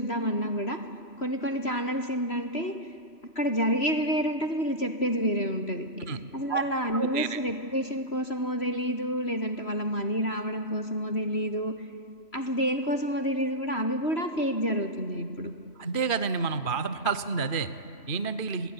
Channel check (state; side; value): late; right; 3.1 ms